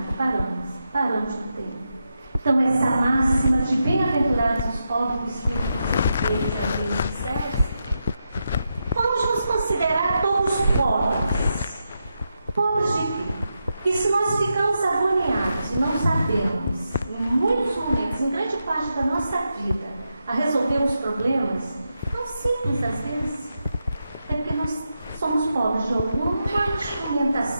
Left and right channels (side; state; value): both; inverted; correlation -0.86